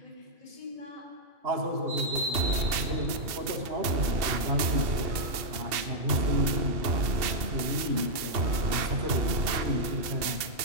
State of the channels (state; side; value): late; left; 2.7 ms